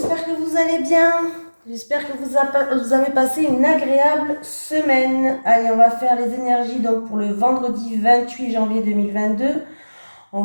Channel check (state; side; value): inverted; both; correlation -1.00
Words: que vous allez bien. J'espère que vous avez passé une agréable semaine. Allez, on va faire les énergies donc pour le vendredi 28 janvier 2022. On